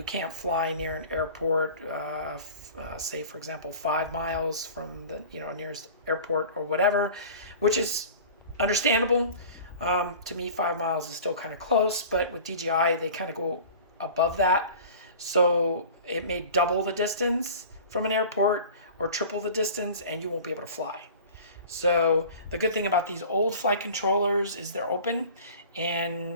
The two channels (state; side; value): inverted; both; correlation -0.40